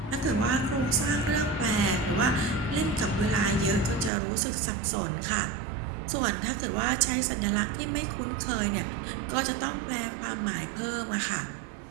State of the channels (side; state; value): left; drops out; at 4.1 s